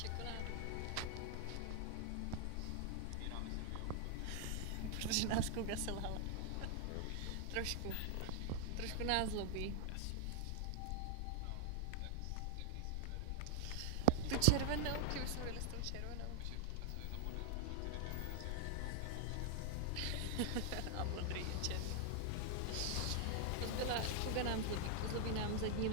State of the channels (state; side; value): different; both; correlation 0.00